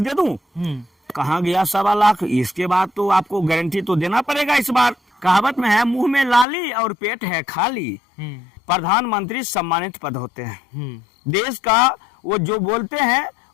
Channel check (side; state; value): right; drops out; at 6.5 s